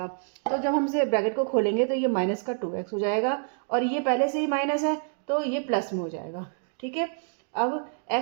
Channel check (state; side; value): silent; left; 60 dB below the other